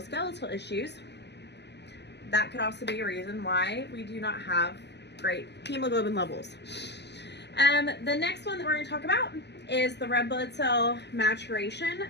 issues, that could also be a reason why we do not have great hemoglobin levels. The next one that we're going to talk about is the red blood cell maturation.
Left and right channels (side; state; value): right; late; 0.50 ms